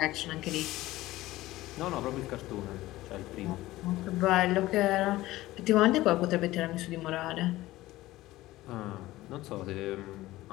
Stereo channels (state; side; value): quieter; right; 17.2 dB